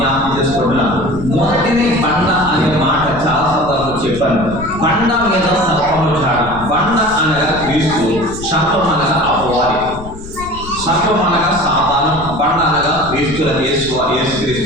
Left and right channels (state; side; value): noise; left; rumble, 14 dB below the sound